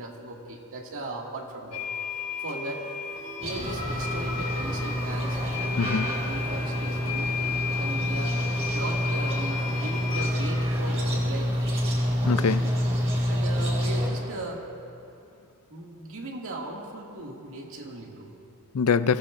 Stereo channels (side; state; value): both; normal; correlation 0.63